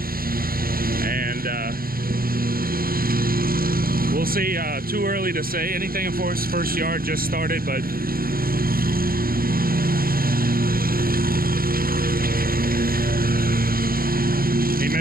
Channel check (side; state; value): left; late; 0.43 ms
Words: And we'll see. Too early to say anything, of course. First yard just started, but he